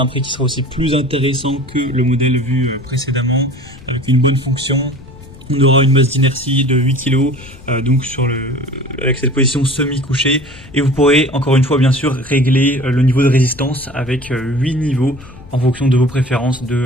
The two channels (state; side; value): noise; left; rumble, 19 dB below the sound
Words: prix qui sera aussi plus intéressant que le modèle vu précédemment, avec une bonne fonction. On aura une masse d'inertie de 8 kg, donc avec cette position semi-couchée. Et vous pourrez, encore une fois, bien sûr, régler le niveau de résistance avec 8 niveaux en fonction de vos préférences,